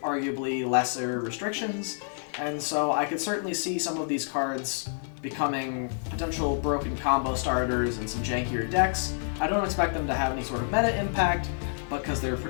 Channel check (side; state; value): right; silent; digital silence